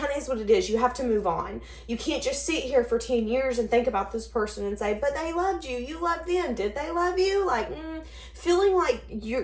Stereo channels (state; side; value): identical; both; correlation 1.00